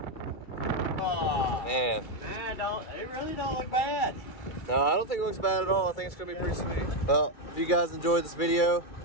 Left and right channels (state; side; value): late; right; 2.3 ms